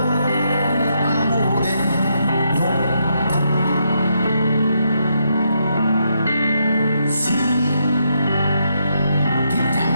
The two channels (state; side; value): inverted; both; correlation -0.78